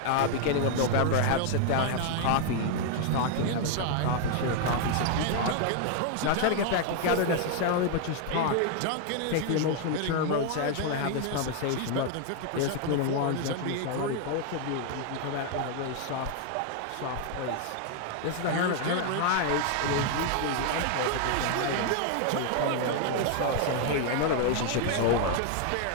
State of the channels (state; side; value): different; both; correlation 0.00